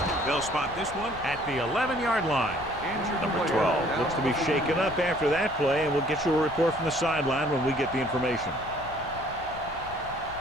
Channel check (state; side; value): noise; left; rumble, 15 dB below the sound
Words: They'll spot this one at the 11-yard line. Number 12 looks to be shaken up after that play, and we'll get you a report from the sideline when we get the information.